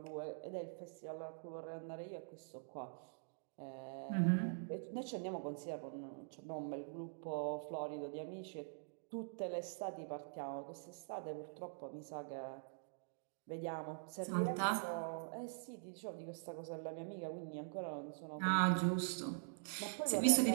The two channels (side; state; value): left; silent; digital silence